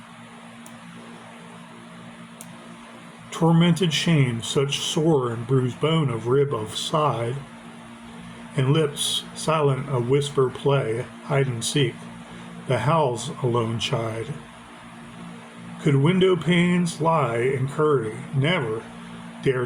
Tormented shame, such sore and bruised bone of rib of side, and lips silent a whisper play, hide and seek, the howls alone chide. Could window panes lie in curry, never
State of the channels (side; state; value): both; identical; correlation 1.00